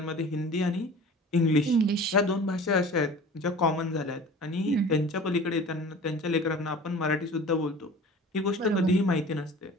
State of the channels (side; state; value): both; normal; correlation 0.41